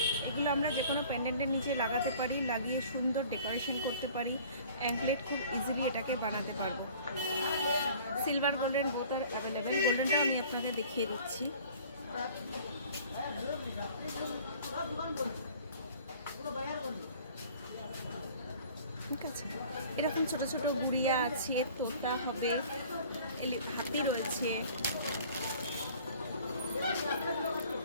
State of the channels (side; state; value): both; inverted; correlation -0.49